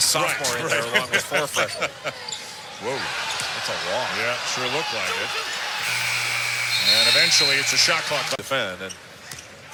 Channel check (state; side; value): identical; both; correlation 1.00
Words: sophomore in there along with 4 freshmen. Whoa. That's a walk. Yeah, sure looked like it. And eventually, it's a shot clock. Defend. And